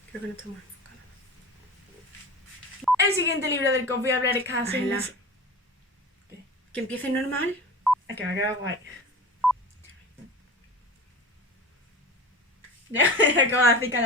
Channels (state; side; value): normal; both; correlation 0.34